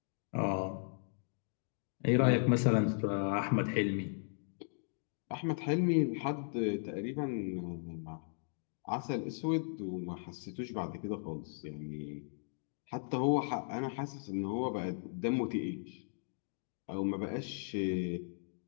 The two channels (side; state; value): right; silent; digital silence